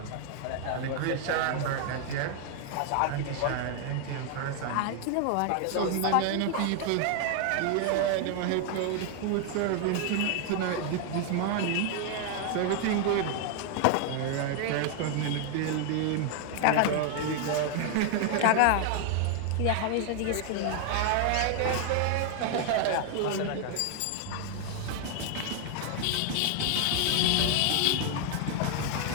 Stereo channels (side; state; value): both; different; correlation 0.00